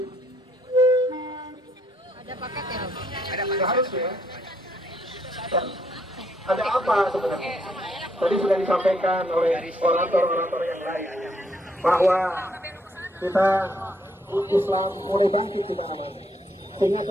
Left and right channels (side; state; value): both; normal; correlation 0.71